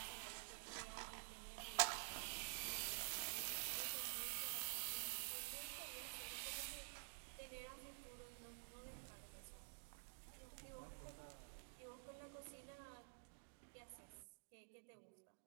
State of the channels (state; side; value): silent; left; digital silence